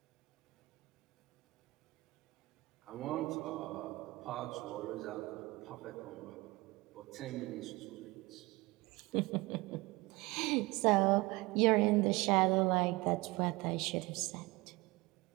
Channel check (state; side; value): quieter; left; 22.2 dB